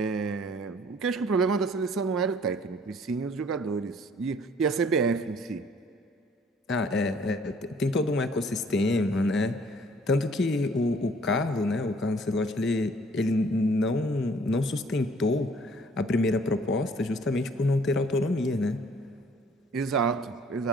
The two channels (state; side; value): normal; both; correlation 0.58